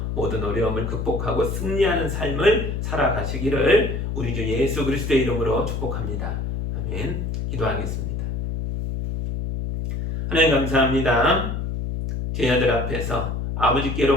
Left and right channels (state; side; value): noise; left; hum, 3 dB below the sound